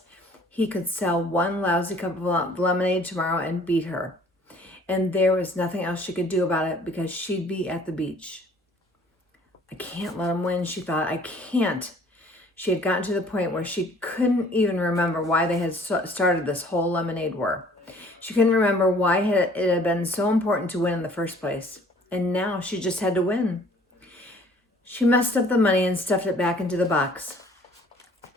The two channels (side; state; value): both; normal; correlation 0.55